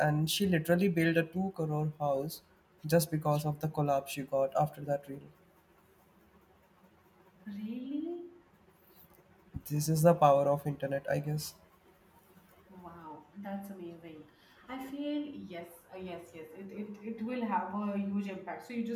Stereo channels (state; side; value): identical; both; correlation 1.00